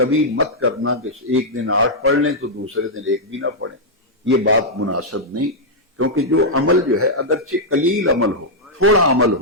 مت کرنا کہ ایک دن 8 پڑھ لیں تو دوسرے دن 1 بھی نہ پڑھیں، یہ بات مناسب نہیں، کیونکہ جو عمل جو ہے اگرچہ قلیل عمل ہو، تھوڑا عمل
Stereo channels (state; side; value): normal; both; correlation -0.06